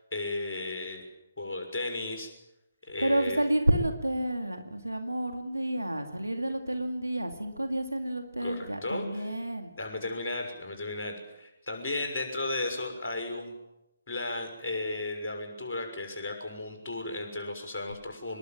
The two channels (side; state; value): both; inverted; correlation -0.85